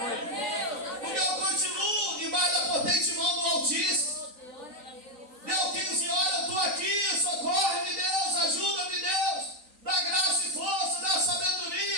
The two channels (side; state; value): left; late; 3.9 ms